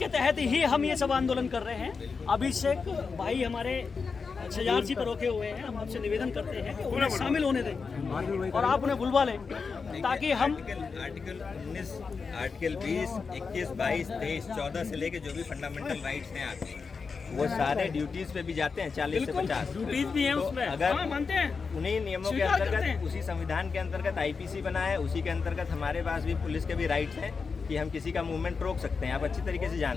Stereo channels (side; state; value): right; quieter; 5.0 dB